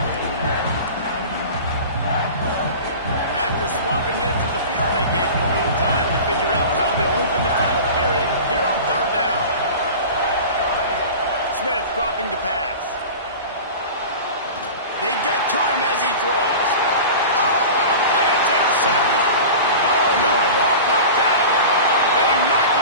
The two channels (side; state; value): both; inverted; correlation -0.34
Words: After swapping into the field, they gave him a little time to figure out how they'll open the final period here on third down. Smith dropping to pass. They get to him as he throws. Oh, what a play! It's intercepted. Oh, no, the ball popped out. They knock